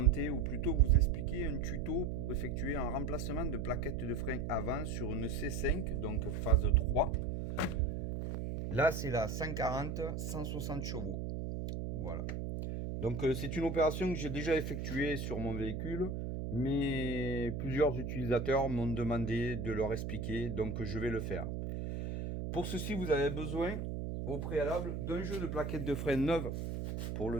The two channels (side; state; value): right; noise; hum, 3 dB below the sound